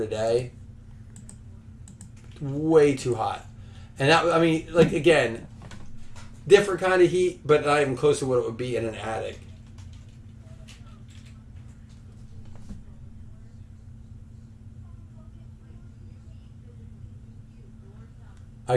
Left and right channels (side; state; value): both; identical; correlation 1.00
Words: Way too hot." And that, I mean, like again, different kind of heat, but not even close to what it would be in an attic.